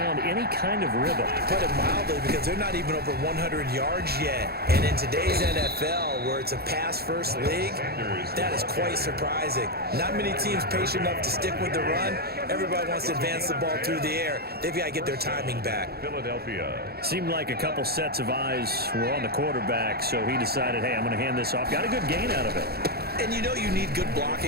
any kind of rhythm. Put it mildly, because they're not even over 100 yards yet. And in today's NFL, where it's a pass-first league, that is quite surprising. Not many teams patient enough to stick with the run. Everybody wants to advance the ball through the air. They've got to get their timing back. Philadelphia. Seemed like a couple sets of eyes were on the quarterback, so he decided, hey, I'm going to hand this off. Got a good gain out of it. And you know you need good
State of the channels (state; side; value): late; left; 0.46 ms